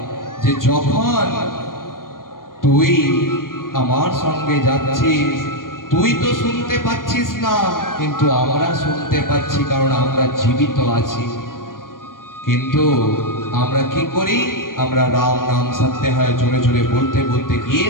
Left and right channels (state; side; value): late; right; 0.91 ms